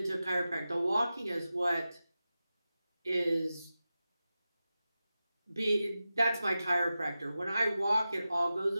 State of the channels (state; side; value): inverted; both; correlation -0.93